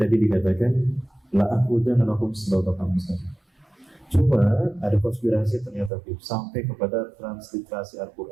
dikatakan la aqudanna lahum siratal mustaqim. Cuma ada konspirasi ternyata sampai kepada transliterasi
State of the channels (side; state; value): left; drops out; at 5.9 s